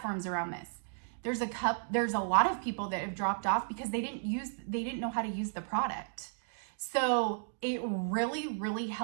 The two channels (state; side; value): silent; left; digital silence